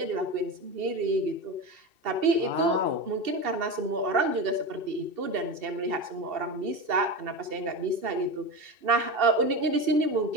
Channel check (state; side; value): late; left; 2.7 ms